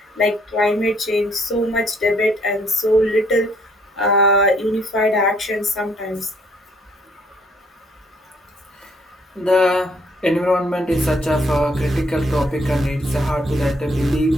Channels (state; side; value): normal; both; correlation 0.65